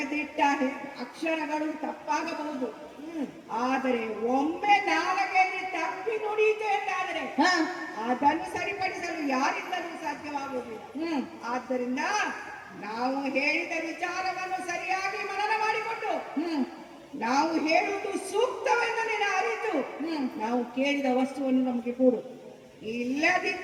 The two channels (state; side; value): identical; both; correlation 1.00